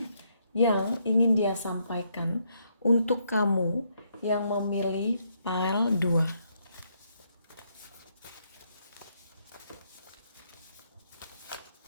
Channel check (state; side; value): inverted; both; correlation -0.75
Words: yang ingin dia sampaikan untuk kamu yang memilih pile 2.